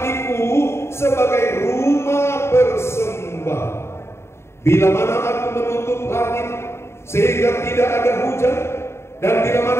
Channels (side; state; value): right; late; 0.13 ms